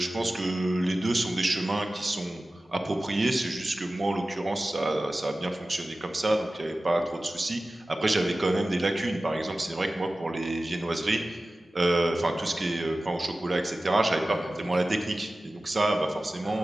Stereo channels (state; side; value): normal; both; correlation 0.96